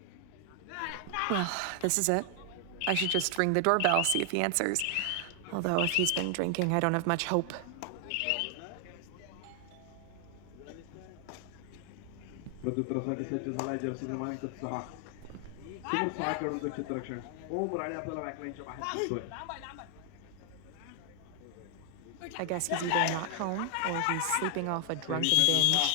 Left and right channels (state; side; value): different; both; correlation 0.00